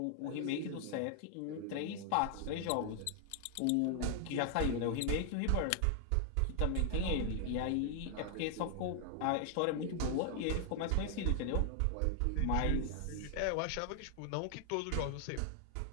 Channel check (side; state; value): both; different; correlation 0.00